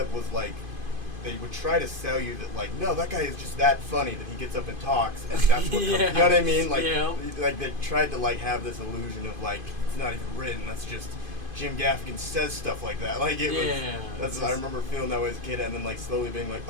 was like they would try to sell you that like no, that guy is just that funny that he gets up and talks and that's what Yeah. comes, you know what I mean? Like Yeah. like they tried to like have this illusion of like it's not even written, that's just Jim Gaffigan says stuff like that. Like it was Yeah, that's it's I just- remember feeling that way as a kid and then like slowly being like,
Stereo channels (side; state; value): left; late; 2.5 ms